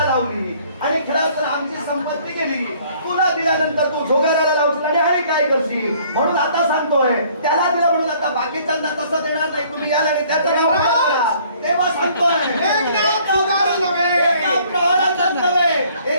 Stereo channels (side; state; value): both; inverted; correlation -0.58